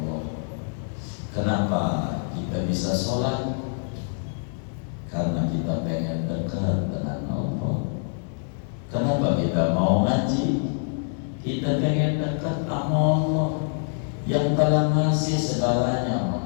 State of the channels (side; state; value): right; silent; 61 dB below the other